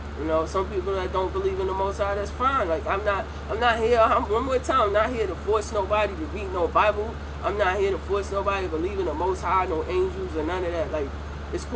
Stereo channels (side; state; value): both; identical; correlation 1.00